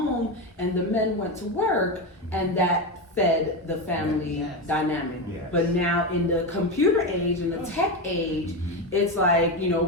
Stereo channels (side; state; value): both; normal; correlation 0.15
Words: and the men went to work, and that fed the family dynamic. Yes. But now in the computer age, in the tech age, it's like, you know,